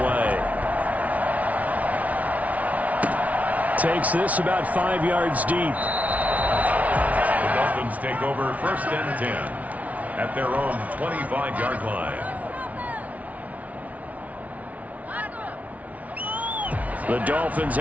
away. Takes this about 5 yards deep. The Dolphins take over 1st and 10 at their own 25-yard line. The Dolphins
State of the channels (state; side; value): late; left; 0.070 ms